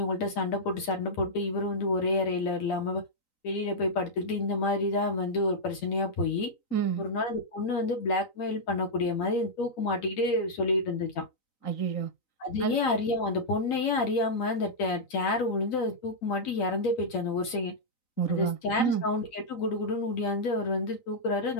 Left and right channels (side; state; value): right; late; 3.9 ms